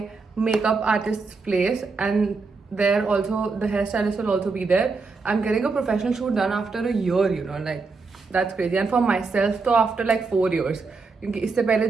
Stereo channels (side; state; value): left; quieter; 4.3 dB